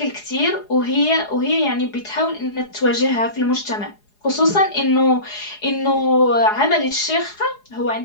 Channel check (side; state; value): right; late; 4.8 ms